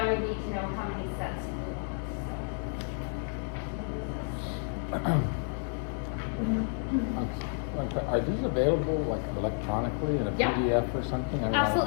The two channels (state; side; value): silent; right; 57 dB below the other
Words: would need to know how many sets you would want, so. Are these available like electronically in a Yeah. PDF or something? I mean,